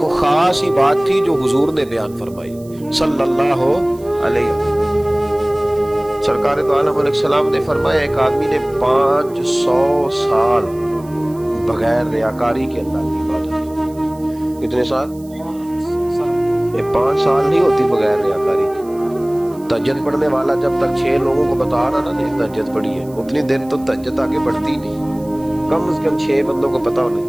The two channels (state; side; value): noise; right; hiss, 25 dB below the sound